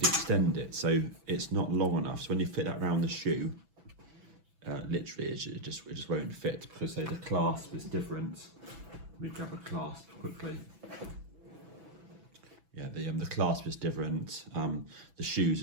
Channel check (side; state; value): left; late; 6.0 ms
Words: extend it so it's not long enough. So when you fit that around the shoe, literally it just won't fit because say the clasp is different. Let me grab a clasp quickly. Yeah, the clasp is different. The shoes